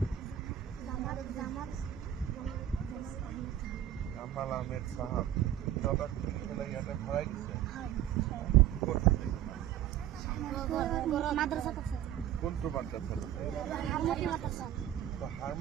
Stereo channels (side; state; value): left; quieter; 11.4 dB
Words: জামাল আহমেদ চাহাব। তহঁতক খুলি পেলাই ইয়াতে ভৰাই দিছে? ক'ত? কোনটো মাদ্ৰাছাত?